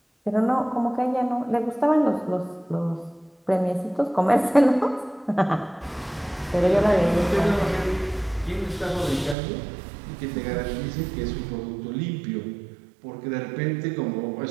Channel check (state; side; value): drops out; left; at 9.3 s